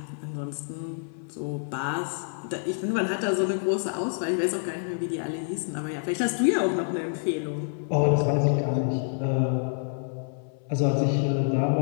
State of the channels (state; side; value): silent; right; 60 dB below the other